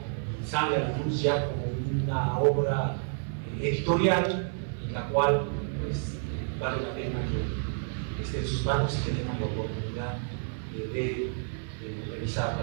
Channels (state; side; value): silent; left; digital silence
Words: y sale a la luz ya como una obra editorial, en la cual pues, vale la pena que esté en sus manos y que tengan la oportunidad de